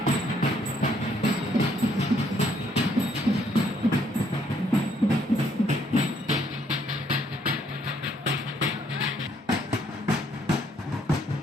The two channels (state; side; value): normal; both; correlation 0.68